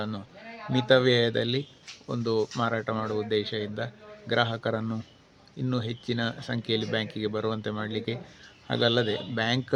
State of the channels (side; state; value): both; identical; correlation 1.00